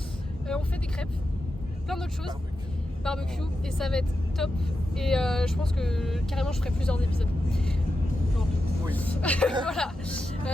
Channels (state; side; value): normal; both; correlation 0.89